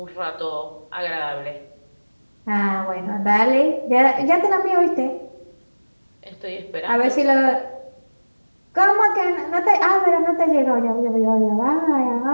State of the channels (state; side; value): inverted; both; correlation -1.00